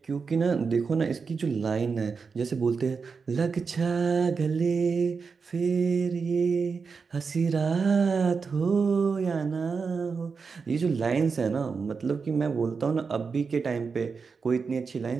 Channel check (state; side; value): quieter; left; 5.2 dB